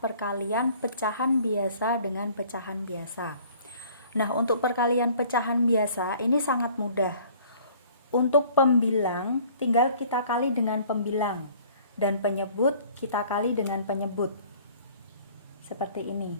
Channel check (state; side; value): inverted; both; correlation -0.53